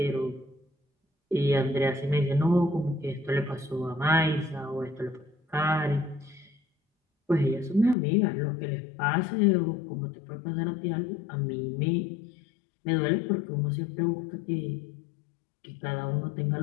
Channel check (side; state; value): right; drops out; at 8.0 s